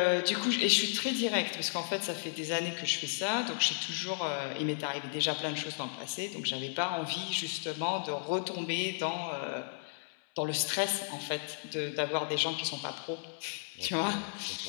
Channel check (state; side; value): silent; right; 55 dB below the other